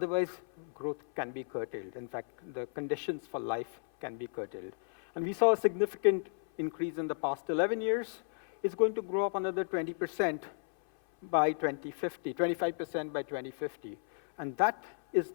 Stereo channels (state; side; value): silent; right; 55 dB below the other